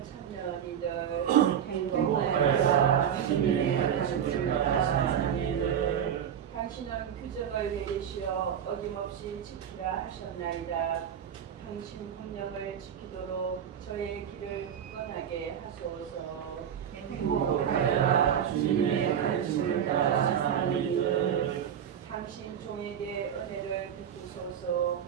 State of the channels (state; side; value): quieter; left; 8.9 dB